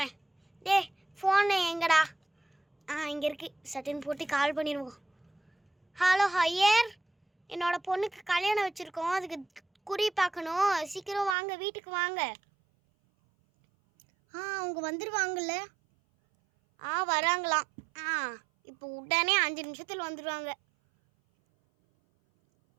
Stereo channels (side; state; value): left; drops out; at 11.4 s